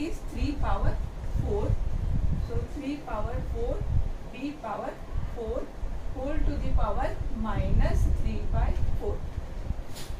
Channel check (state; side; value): identical; both; correlation 1.00